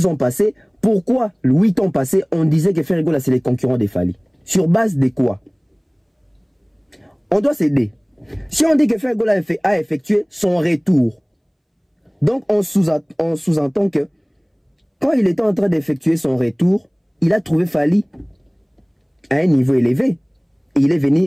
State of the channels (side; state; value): both; identical; correlation 1.00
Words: ans passés? Pourquoi 8 ans passés on disait que Ferregola c'est les concurrents des Fally? Sur base de quoi? On doit s'aider. Si on dit que Ferregola a effectué son retour, donc on sous-entend que quand il était en train d'effectuer son retour, il a trouvé Fally à un niveau élevé. il est